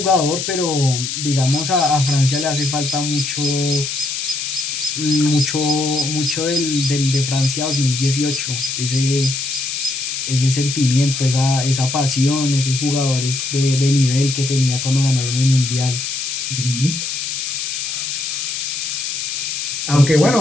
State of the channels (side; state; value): left; noise; hiss, 3 dB below the sound